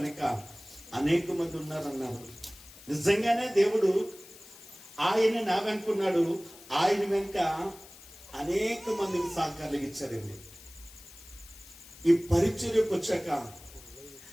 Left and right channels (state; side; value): noise; left; hiss, 20 dB below the sound